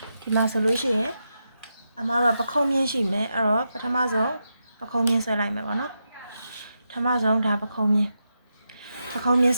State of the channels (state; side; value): inverted; both; correlation -0.86